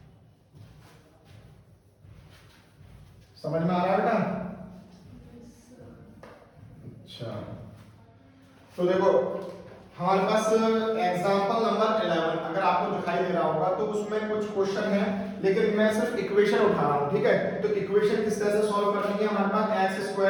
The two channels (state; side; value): identical; both; correlation 1.00